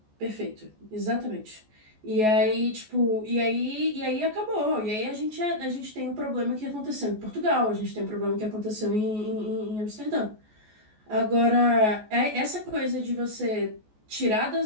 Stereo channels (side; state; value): left; late; 14 ms